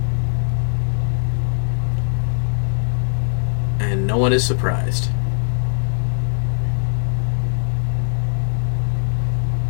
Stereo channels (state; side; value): silent; right; 59 dB below the other